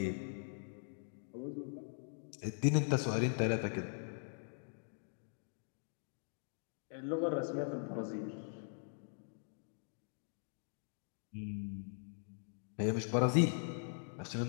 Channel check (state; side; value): silent; right; digital silence